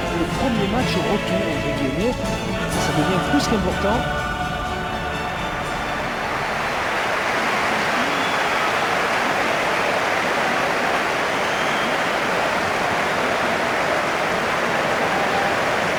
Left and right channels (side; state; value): both; identical; correlation 1.00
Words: le premier match retour, entre guillemets. Ça devient plus qu'important.